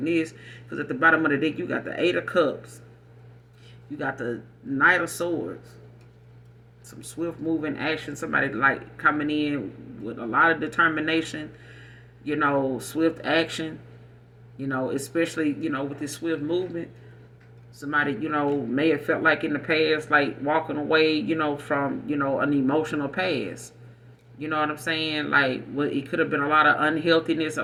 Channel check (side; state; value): both; identical; correlation 1.00